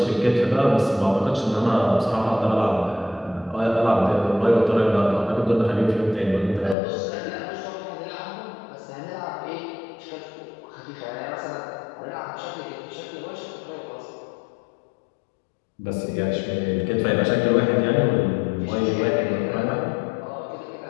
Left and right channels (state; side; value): drops out; right; at 6.8 s